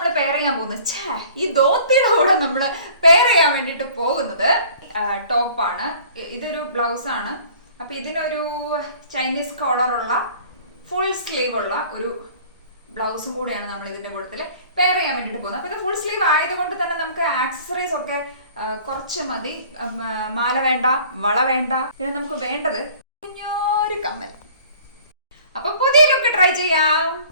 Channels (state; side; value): inverted; both; correlation -0.50